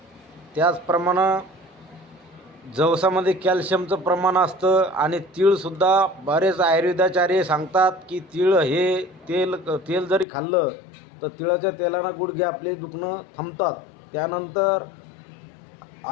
त्याचप्रमाणे जवसामध्ये कॅल्शियमचं प्रमाण असतं आणि तीळसुद्धा बरेच आयुर्वेदाचार्य सांगतात की तीळ हे तेल जरी खाल्लं तर तिळाच्या तेलानं गुडघे आपले दुखणं थांबतात. त्यानंतर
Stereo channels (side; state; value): right; drops out; at 10.2 s